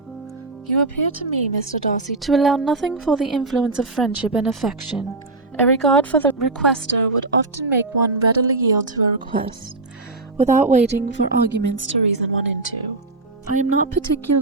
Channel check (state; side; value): quieter; left; 3.3 dB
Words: You appear to me, Mr. Darcy, to allow nothing for the influence of friendship and affection. A regard for the requester would often make one readily yield to a request, without waiting for arguments to reason one into. I am not